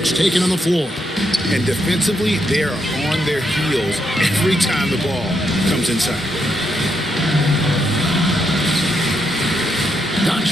taken on the floor. And defensively, they are on their heels every time the ball comes inside.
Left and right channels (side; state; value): both; normal; correlation 0.79